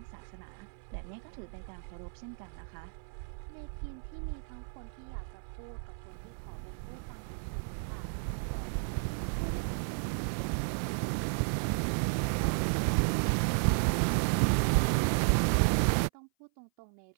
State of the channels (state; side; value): silent; left; 56 dB below the other